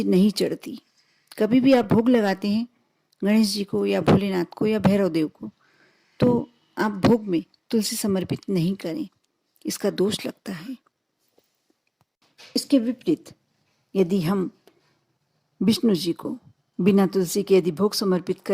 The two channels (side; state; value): both; identical; correlation 1.00